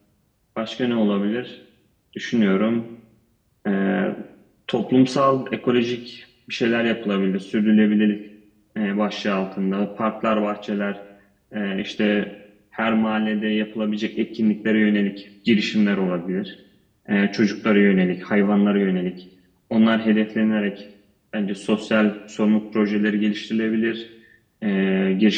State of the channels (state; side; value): identical; both; correlation 1.00